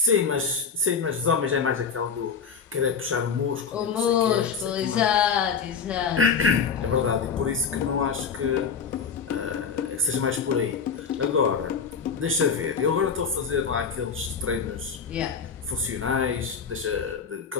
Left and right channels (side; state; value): right; quieter; 6.0 dB